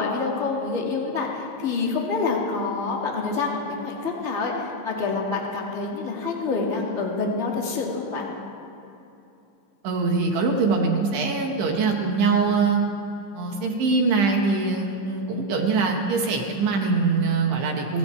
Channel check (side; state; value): left; late; 15 ms